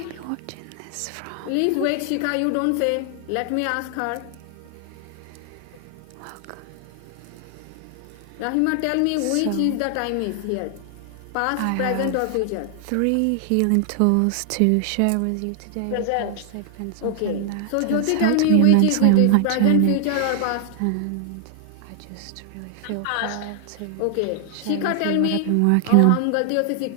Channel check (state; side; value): different; both; correlation 0.00